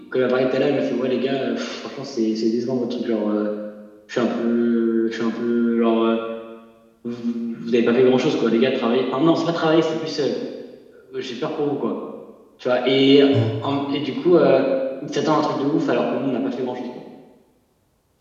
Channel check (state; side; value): identical; both; correlation 1.00